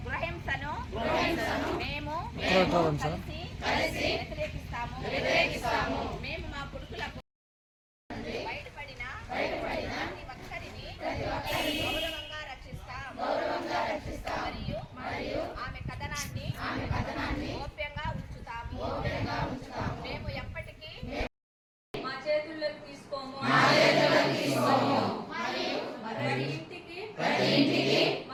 గృహహింసను మేము కలిసి వ్యతిరేకిస్తాము. మేము మా కొడుకులకు బయటపడిన ప్రతి ఒక్కరిని గౌరవంగా రక్షిస్తాం మరియు ఆమె కథనాన్ని గోప్యంగా ఉంచుతాము. మేము ఎప్పటికీ మా చేతుల్లోకి తీసుకోము. ప్రతి ఇంటికి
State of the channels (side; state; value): both; identical; correlation 1.00